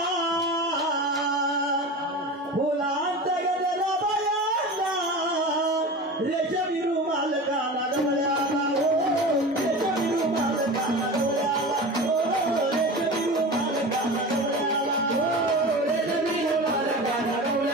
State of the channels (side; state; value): both; normal; correlation 0.31